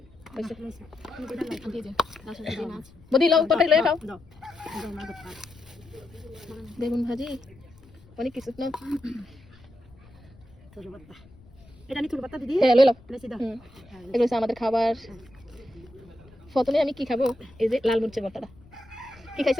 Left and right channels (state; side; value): noise; left; rumble, 24 dB below the sound